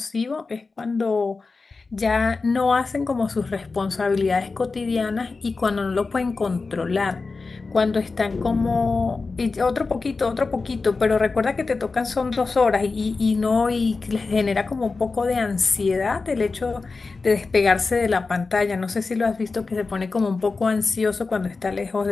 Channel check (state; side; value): quieter; right; 4.1 dB